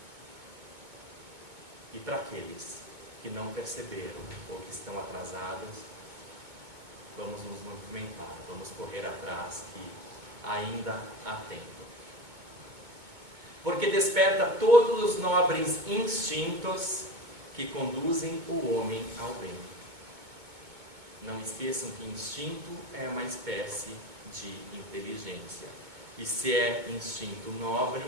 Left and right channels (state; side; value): late; left; 2.2 ms